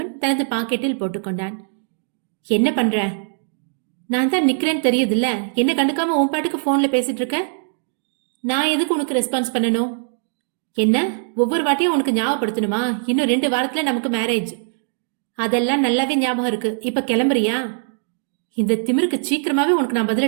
தனது பாக்கெட்டில் போட்டுக்கொண்டான். என்ன பண்ற? நான் தான் நிக்கிறேன்னு தெரியுதுல்ல, என்ன கண்டுக்காம உன் பாட்டுக்கு போன்ல பேசிட்டு இருக்க. நான் எதுக்கு உனக்கு ரெஸ்பான்ஸ் பண்ணணும்? என்ன ஒவ்வொரு வாட்டியும் உனக்கு ஞாபகப்படுத்தணுமா? இன்னும் 2 வாரத்துல நமக்கு மேரேஜ். அதெல்லாம் நல்லாவே ஞாபகம் இருக்கு. இப்ப கிளம்புறியா? இந்த திமிருக்கு சீக்கிரமாவே உனக்கு நான்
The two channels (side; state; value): left; silent; digital silence